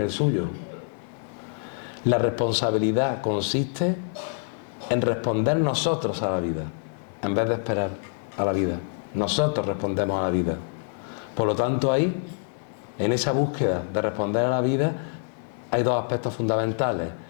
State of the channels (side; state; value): right; silent; 61 dB below the other